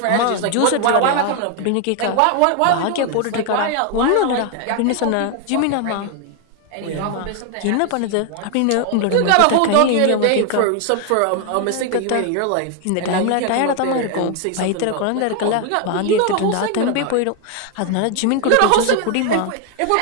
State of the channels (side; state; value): both; different; correlation 0.01